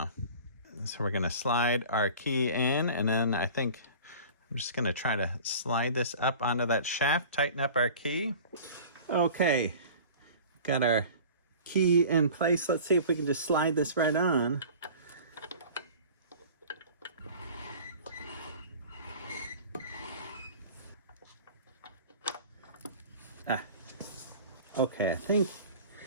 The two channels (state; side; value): inverted; both; correlation -0.41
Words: So we're gonna slide our key in, and then I think I'm just gonna try to slide this up onto that shaft, tighten up our key. Okay, got our key in place. Let's see if we can just slide this right on. Okay, I think